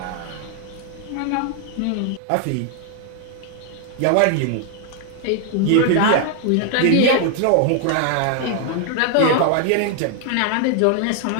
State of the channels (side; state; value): both; different; correlation 0.00